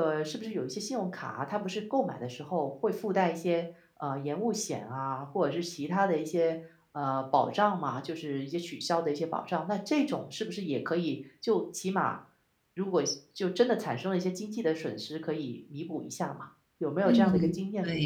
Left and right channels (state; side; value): identical; both; correlation 1.00